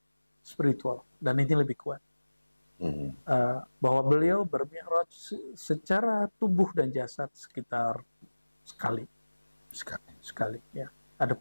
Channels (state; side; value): inverted; both; correlation -1.00